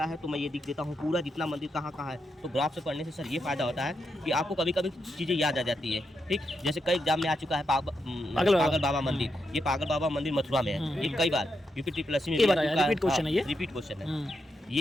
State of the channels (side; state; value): both; normal; correlation 0.84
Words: है तो मैं ये लिख देता हूँ पूरा जितना मंदिर कहाँ कहाँ है। तो ग्राफ से पढ़ने से सर ये फायदा होता है कि आपको कभी कभी चीज़ें याद आ जाती है, ठीक। जैसे कई एग्जाम में आ चुका है पागल बाबा मंदिर, ये पागल बाबा मंदिर मथुरा में है, ये कई बार यूपी ट्रिपल में रिपीट क्वेश्चन है, ये रिपीट क्वेश्चन है। ये